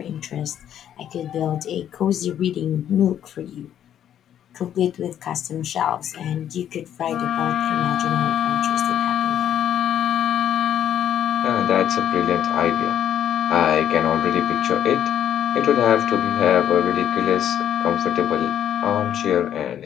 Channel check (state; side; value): quieter; right; 10.2 dB